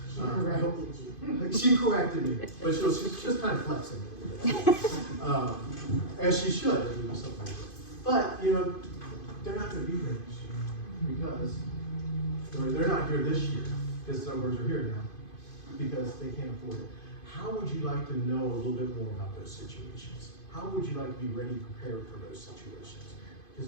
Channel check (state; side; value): late; right; 2.5 ms